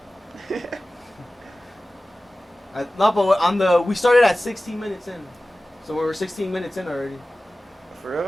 dude. No, but we started at 16 minutes in, so we were 16 minutes in already. For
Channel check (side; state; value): both; normal; correlation 0.96